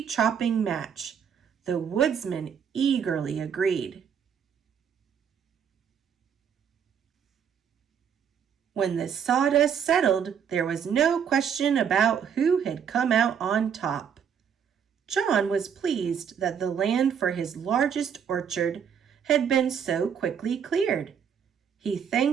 match. The woodsman eagerly agreed. When the sawdust settled, there was no question about who had come out on top. John was pleased that the land for his largest orchard had been so quickly cleared. He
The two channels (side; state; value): left; quieter; 7.7 dB